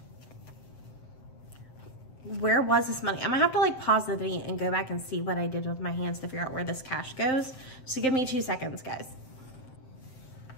Where was this money? I'm gonna have to like pause the video and go back and see what I did with my hands to figure out where this cash goes. So give me 2 seconds, guys.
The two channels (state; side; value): late; right; 7.7 ms